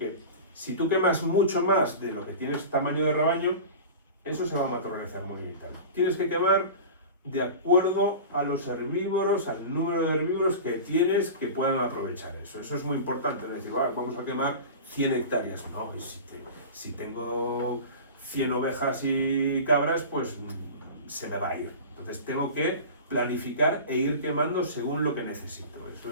si tú quemas mucho más de lo que tienes tamaño de rebaño, eso se va a materializar muy bien. Tienes que quemar de acuerdo a los herbívoros, al número de herbívoros que tienes que puedan aprovechar eso. Eso es muy importante, no es decir, vamos a quemar 100 hectáreas. No, si tengo 100 ovejas y cabras, pues se me va a ir. Entonces tengo que planificar e ir quemando según lo que necesito.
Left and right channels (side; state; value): both; inverted; correlation -0.33